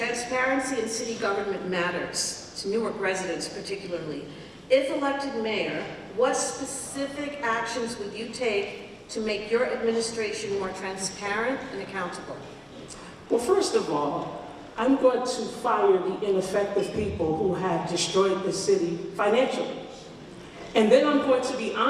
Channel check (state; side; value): identical; both; correlation 1.00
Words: in city government matters, to Newark residents particularly. If elected mayor, what specific actions would you take to make your administration more transparent and accountable? Well, first of all, I'm going to fire the ineffective people who have destroyed the city financially. And then I'm going to be